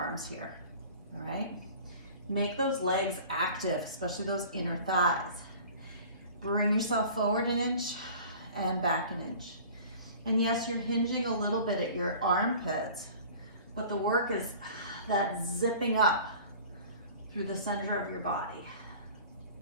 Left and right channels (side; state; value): both; inverted; correlation -0.44